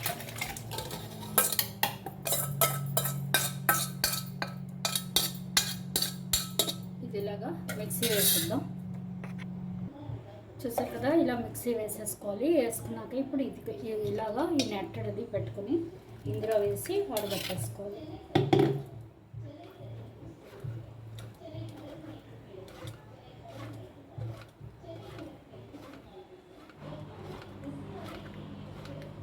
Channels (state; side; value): identical; both; correlation 1.00